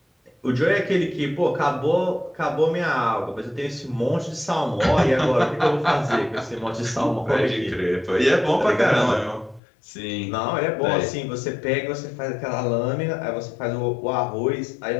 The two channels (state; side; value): drops out; right; at 9.6 s